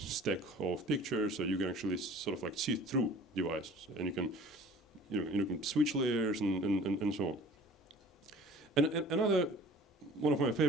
of pictures, so you can actually sort of like see through devices, and you can, you can switch layers and so on. And another one of my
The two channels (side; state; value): both; normal; correlation 0.46